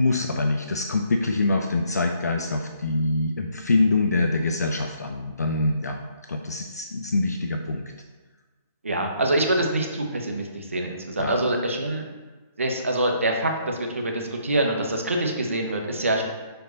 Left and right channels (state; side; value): inverted; both; correlation -0.69